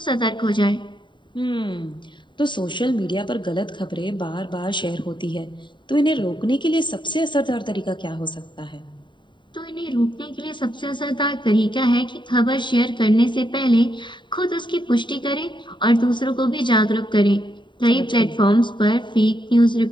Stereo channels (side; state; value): right; late; 0.23 ms